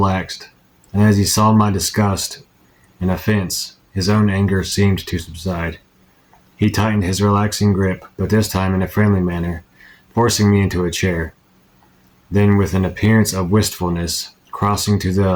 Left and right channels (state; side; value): identical; both; correlation 1.00